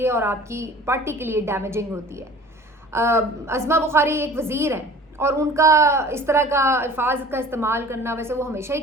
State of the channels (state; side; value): normal; both; correlation 0.45